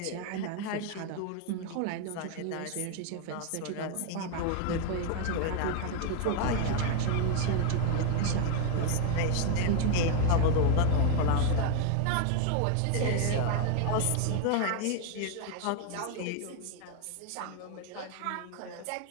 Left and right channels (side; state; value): both; different; correlation 0.00